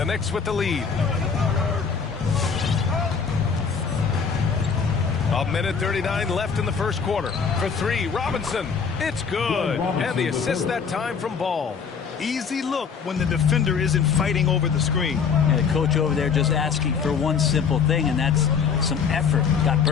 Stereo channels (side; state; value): right; quieter; 6.1 dB